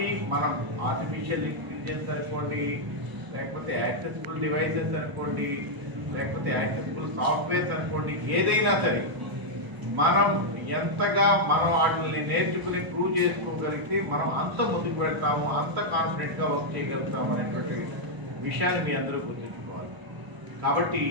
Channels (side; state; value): left; late; 1.0 ms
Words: మనం ఆర్టిఫిషియల్ ఇంటెలిజెన్స్ అనుకోండి, లేకపోతే యాక్సెసిబుల్ డివైసెస్ అనుకోండి, లేకపోతే యాక్సెసిబుల్ సాఫ్ట్వేర్స్ అనుకోండి, ఏదైనా సరే మనం ఎంతగా మనం వాటిని నేర్చుకుని ప్రూవ్ చేసుకోగలిగితే మనం అంత ముందుకు వెళ్తాము, అంత కాన్ఫిడెంట్గా వర్క్ చేయగలుగుతాము అనేటువంటి విషయాన్ని మీ అందరూ గుర్తుంచుకోవాలి. కాబట్టి